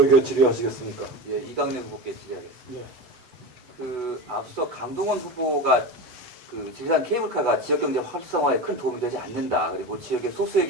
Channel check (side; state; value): left; late; 8.0 ms